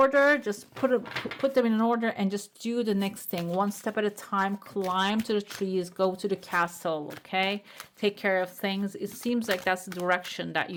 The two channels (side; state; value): both; identical; correlation 1.00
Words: just put them in an order and just do the next thing one step at a time. Climb to the trees, go to the castle, okay? Take care of things. It seems like that's the direction that you